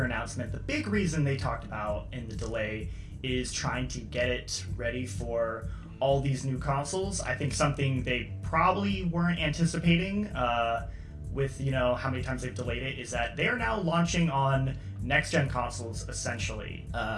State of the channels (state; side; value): identical; both; correlation 1.00